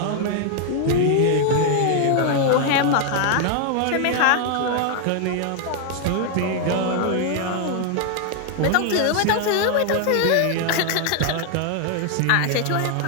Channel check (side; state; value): both; different; correlation 0.00